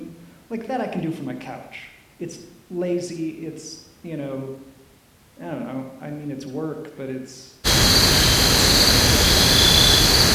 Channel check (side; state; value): both; identical; correlation 1.00